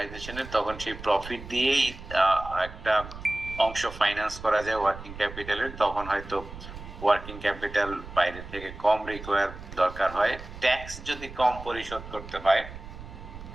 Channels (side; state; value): right; noise; rumble, 13 dB below the sound